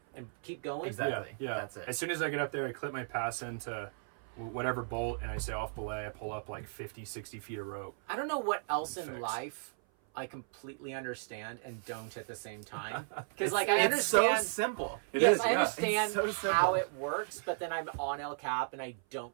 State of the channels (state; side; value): silent; left; 54 dB below the other